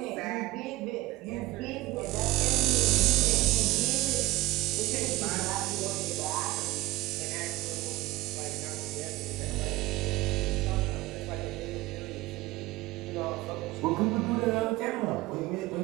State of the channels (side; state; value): left; quieter; 19.1 dB